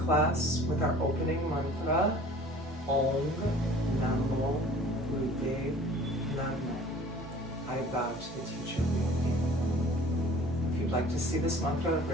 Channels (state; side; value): normal; both; correlation 0.47